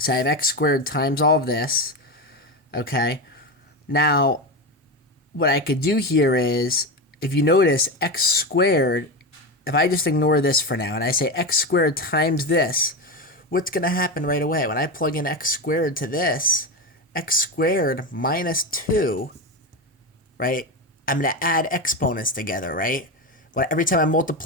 I have x squared times all of this, okay? Now, what I could do here is, if you notice, x squared, if I just ignore this for now and I say x squared times this, what's going to happen right away? When I plug in x squared to this, x squared minus 2 right? I'm going to add exponents together, right? Every time I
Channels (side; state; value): both; normal; correlation 0.17